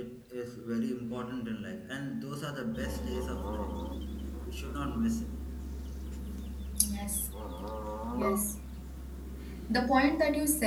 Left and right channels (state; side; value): identical; both; correlation 1.00